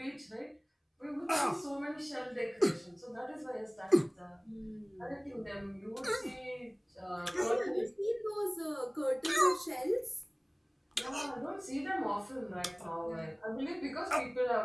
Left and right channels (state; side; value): identical; both; correlation 1.00